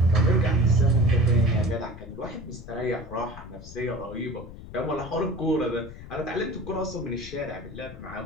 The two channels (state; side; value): noise; left; rumble, 14 dB below the sound